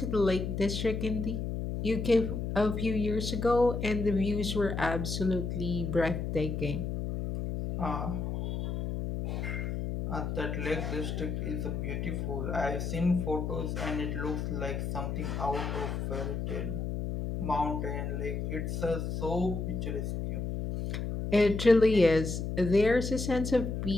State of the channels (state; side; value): noise; left; hum, 3 dB below the sound